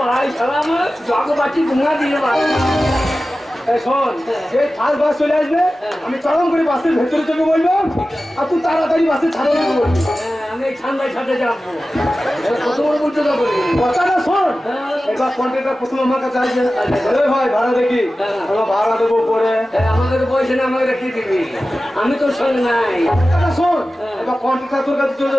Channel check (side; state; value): both; normal; correlation 0.95